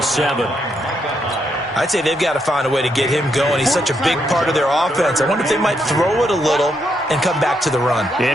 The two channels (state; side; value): normal; both; correlation 0.78